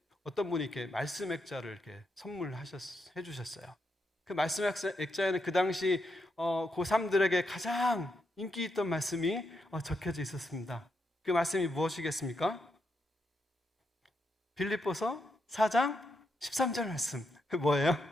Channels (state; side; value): normal; both; correlation 0.82